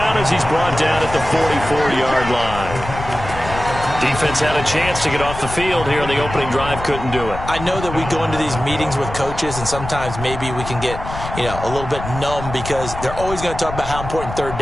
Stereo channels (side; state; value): left; noise; rumble, 9 dB below the sound